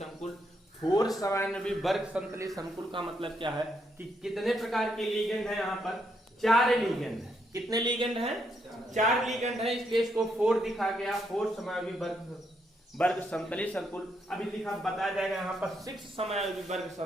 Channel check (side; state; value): both; normal; correlation 0.77